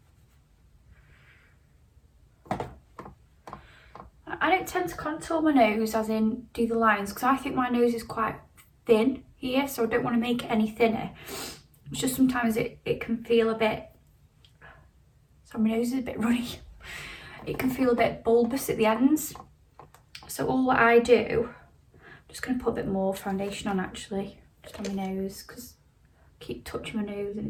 I don't tend to contour my nose, as in do the lines, because I think my nose is quite thin here, so I don't want to make it any thinner. It's just sometimes it can feel a bit, sorry, my nose is a bit runny. It can feel a bit bulbous at the ends. So all what I do, I'm just going to put a bit more foundation on actually, just on my nose, because I keep touching my nose and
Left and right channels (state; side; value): identical; both; correlation 1.00